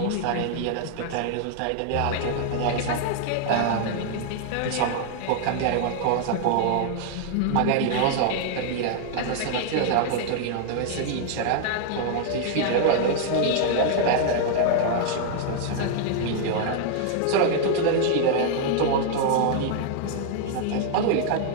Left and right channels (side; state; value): both; different; correlation 0.00